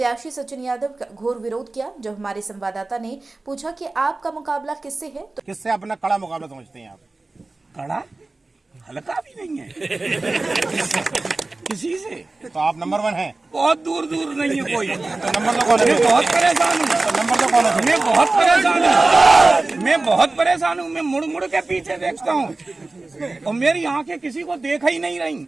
सचिन यादव का घोर विरोध किया। जब हमारे संवाददाता ने पूछा कि आपका मुकाबला किससे है, तो किससे अपना कड़ा मुकाबला समझते हैं आप? कड़ा हल्का भी नहीं है किसी से। तो आप नंबर 1 हैं? बहुत दूर दूर नहीं है कोई। तो नंबर तो कौन है? मैं बहुत परेशान हूँ। तो नंबर तो कौन है? मैं बहुत परेशान हूँ। मैं बहुत परेशान हूँ। मैं मुड़ मुड़ के पीछे देखता हूँ और मेरी आंखें किसी को देख ही नहीं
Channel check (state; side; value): quieter; left; 3.3 dB